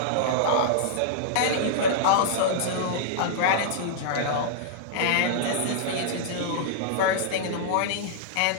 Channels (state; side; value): different; both; correlation -0.02